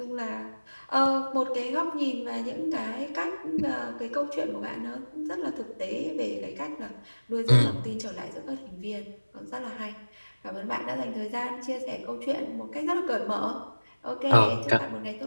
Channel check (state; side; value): inverted; both; correlation -1.00